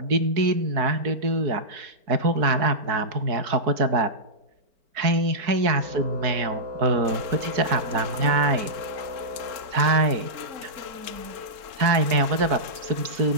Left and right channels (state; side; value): late; left; 4.4 ms